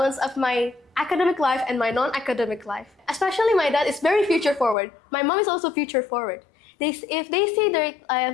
of my academic life and my non-academic life. Especially my dad is very future forward. My mom is also future forward. If they see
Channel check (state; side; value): drops out; right; at 4.8 s